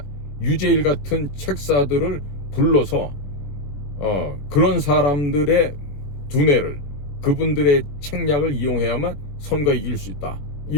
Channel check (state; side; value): late; right; 21 ms